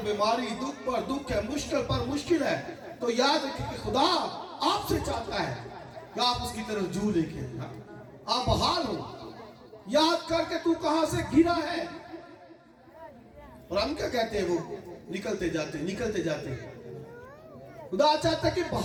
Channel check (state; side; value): identical; both; correlation 1.00